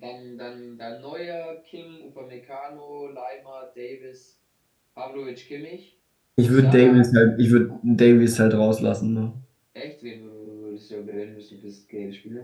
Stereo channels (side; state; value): both; identical; correlation 1.00